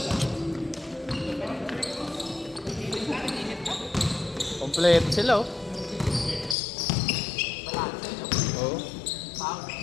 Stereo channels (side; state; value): right; drops out; at 6.6 s